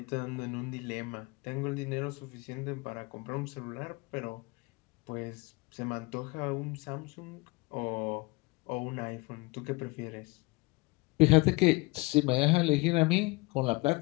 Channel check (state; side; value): quieter; right; 24.8 dB